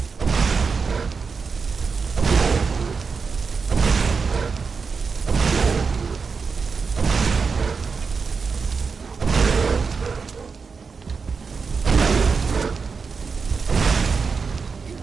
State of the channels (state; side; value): quieter; left; 5.2 dB